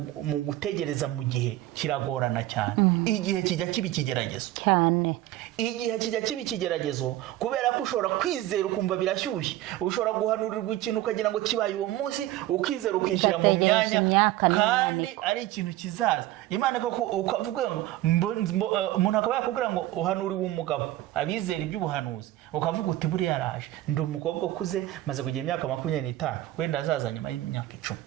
gutegereza mu gihe kiragorana cyane. Igihe kijya kiba ikigeragezo cyane. Igihe kijya kiba ikigeragezo kubera ko ushobora kwizera ukumva birashyushye, ushobora guhanurirwa ikintu ukagira ngo kibaye uwo munsi, ukizera ukishyira mu myanya kandi ari ikintu kizaza. Imana ko ukavuga ngo umuntu akaba yakubwira ngo uhanuriwe umugabo, abizera iby'ubuhanuzi, ukavuga uti buriya yaraje, ndi umukobwa ukuze maze kugira imyaka 25, wenda azaza nyuma y'imyaka 10.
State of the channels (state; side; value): quieter; left; 15.3 dB